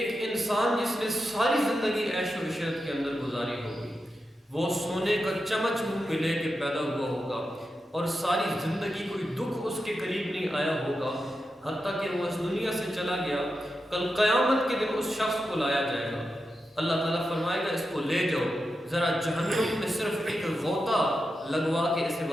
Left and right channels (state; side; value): normal; both; correlation 0.89